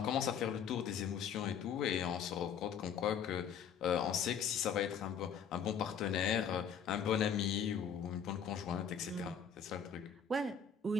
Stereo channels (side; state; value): right; quieter; 7.5 dB